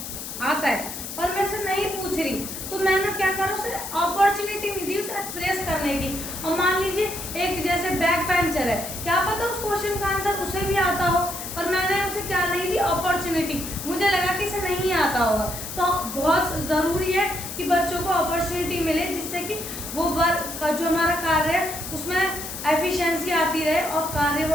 पर मैं उसे नहीं पूछ रही, तो मैंने क्या करा, उसे अपॉर्चुनिटी नहीं दी उसे एक्सप्रेस करने की। और मान लीजिए एक जैसे बैक बेंचर है, क्या पता उस क्वेश्चन का आंसर उसे भी आता हो, पर मैंने उसे क्या नहीं दी, अपॉर्चुनिटी। मुझे लगा कि इसे नहीं आता होगा। तो बहुत ज़रूरी है कि बच्चों को अपॉर्चुनिटी मिले जिससे कि वो वर्क का जो हमारा कार्य है उसमें एफिशिएंसी आती रहे और कार्य वो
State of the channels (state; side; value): noise; left; hiss, 8 dB below the sound